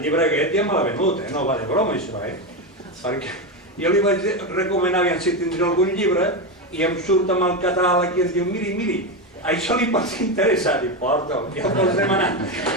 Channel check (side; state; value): both; normal; correlation 0.13